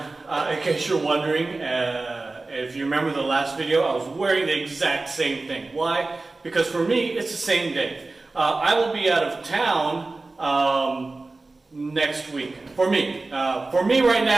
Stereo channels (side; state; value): left; quieter; 3.4 dB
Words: case you're wondering, if you remember the last video, I was wearing the exact same thing. Why? Because for me, it's the same day. I will be out of town next week. For me right